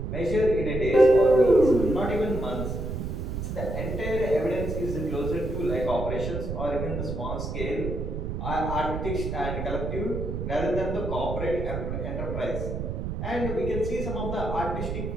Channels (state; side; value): noise; right; rumble, 4 dB below the sound